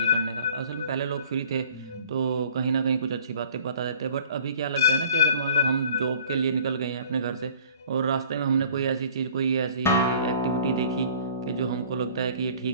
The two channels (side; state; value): both; inverted; correlation -0.50